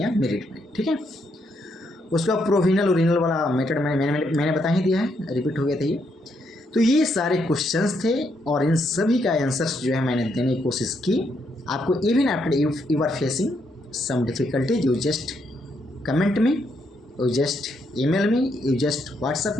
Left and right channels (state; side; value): normal; both; correlation 0.76